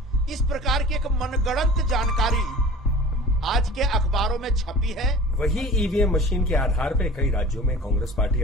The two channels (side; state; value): both; normal; correlation 0.42